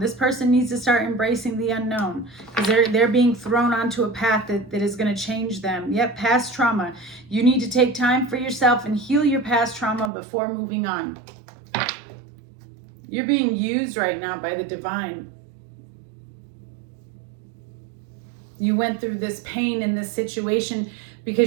This person needs to start embracing the unknown because they're being thrown onto a path that is going to change them. Yep, past trauma. You need to take time for yourself and heal your past trauma before moving on. You're being used right now by the divine. You went through this pain in this situation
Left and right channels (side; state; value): left; drops out; at 10.1 s